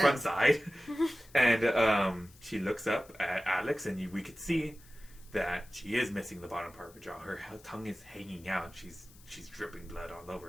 side. And she looks up at Alex, and we could see that she is missing the bottom part of her jaw. Her tongue is hanging out. She's dripping blood all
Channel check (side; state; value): left; noise; hiss, 24 dB below the sound